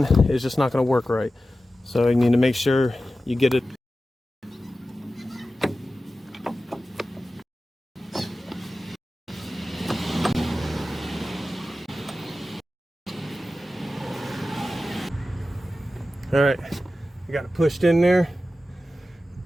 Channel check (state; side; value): normal; both; correlation 0.94